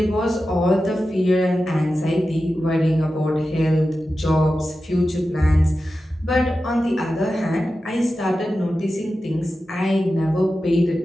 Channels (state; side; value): normal; both; correlation 0.92